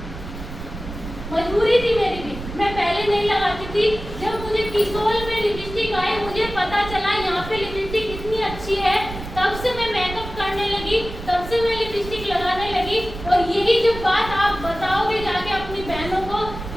मजबूरी थी मेरी भी, मैं पहले नहीं लगाती थी। जब मुझे किसोल में लिपस्टिक आई, मुझे पता चला यहाँ पे लिपस्टिक इतनी अच्छी है, तब से मैं मेकअप करने लगी, तब से मैं लिपस्टिक लगाने लगी। और यही जब बात आप बताओगे जाके अपनी बहनों को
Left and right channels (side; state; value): right; noise; rumble, 10 dB below the sound